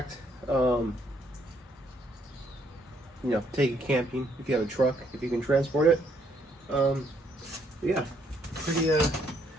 You know, take it camping if you have a truck, if you can transport it. Yeah,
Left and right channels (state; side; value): normal; both; correlation 0.70